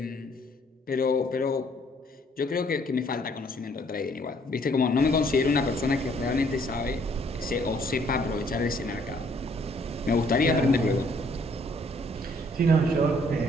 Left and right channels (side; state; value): both; normal; correlation 0.64